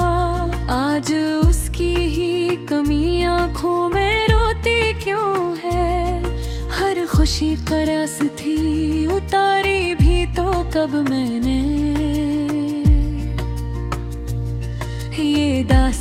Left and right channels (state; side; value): identical; both; correlation 1.00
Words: आज उसकी ही कमी आंखों में रोती क्यों है। हर खुशी का रस थी उतारी भी तो कब मैंने, ये